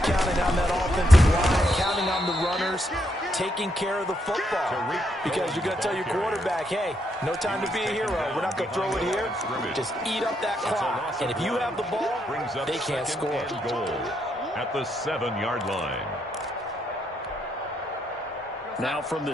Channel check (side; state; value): both; normal; correlation 0.77